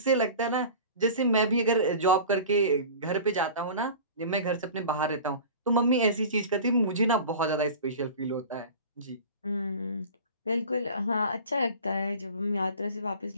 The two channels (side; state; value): both; inverted; correlation -0.38